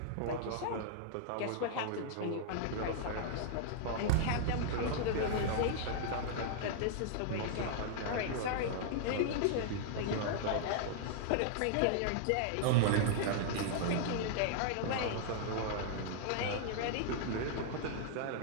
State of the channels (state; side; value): different; both; correlation -0.01